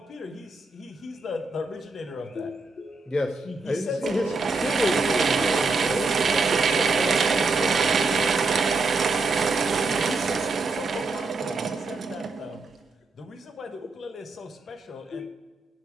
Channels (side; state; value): left; quieter; 3.6 dB